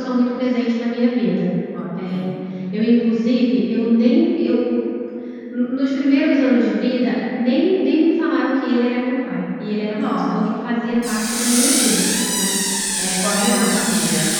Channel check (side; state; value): both; identical; correlation 1.00